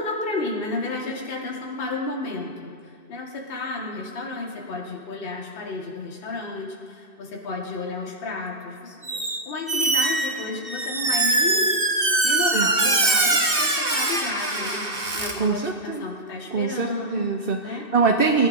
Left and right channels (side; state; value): right; late; 2.6 ms